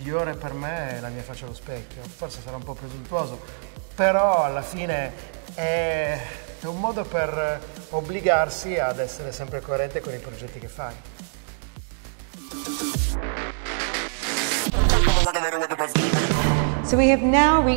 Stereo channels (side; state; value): left; silent; digital silence